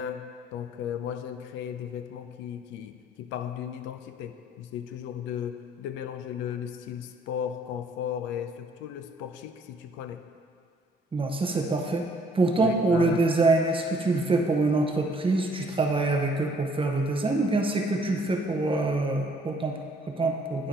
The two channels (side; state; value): both; normal; correlation 0.62